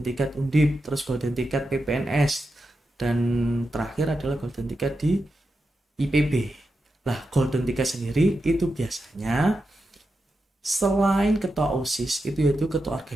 Undip, terus golden ticket PPNS, dan terakhir adalah golden ticket di IPB. Lah, golden ticket sendiri itu biasanya selain ketua OSIS itu yaitu ketua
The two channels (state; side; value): normal; both; correlation 0.89